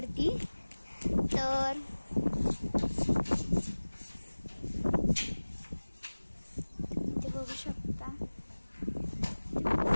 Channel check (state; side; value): inverted; both; correlation -1.00